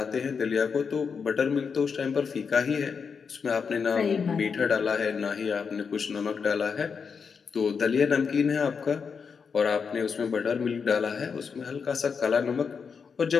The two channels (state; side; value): quieter; right; 5.9 dB